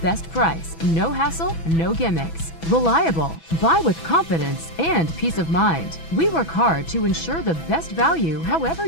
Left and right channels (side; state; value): right; late; 6.1 ms